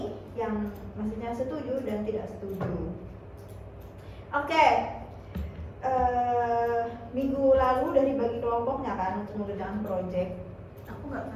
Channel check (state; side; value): identical; both; correlation 1.00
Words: yang maksudnya setuju dan tidak setuju. Oke. Minggu lalu udah dibagi kelompoknya kan untuk mengerjakan project. Aku nggak